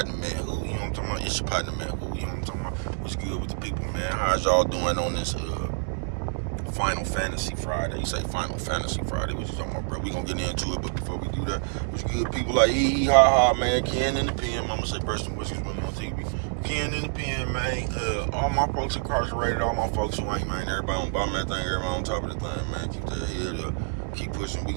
man. Who? You know what I'm talking about? It's your partner, man. Who? You know what I'm talking about? What's good with the people, man? How's y'all doing on this Final Fantasy Friday? You say Final Fantasy Friday? What you talking about, bro? We gonna get into it, but before we do that, what's good, people like hee ha ha, man? Ken in the pen. Mama say Preston Whiskers when on TV. Ken in the pen, man. All my folks incarcerated, all my folks who ain't, man. Everybody on bottom of that thing, everybody on top of the thing, man. Keep that head up. Keep pushing. We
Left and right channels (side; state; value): left; silent; 60 dB below the other